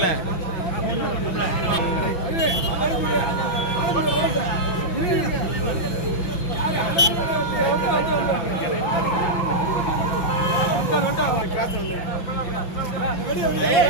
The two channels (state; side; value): late; right; 5.9 ms